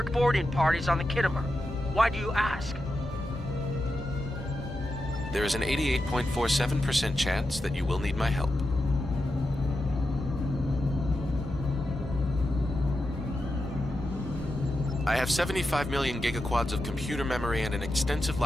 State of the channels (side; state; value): both; normal; correlation 0.89